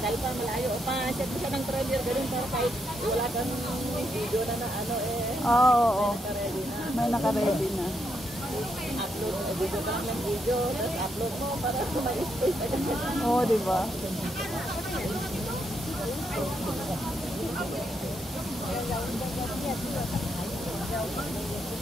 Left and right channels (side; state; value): both; normal; correlation 0.79